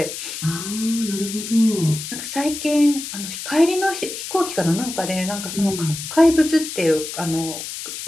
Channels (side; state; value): left; noise; hiss, 8 dB below the sound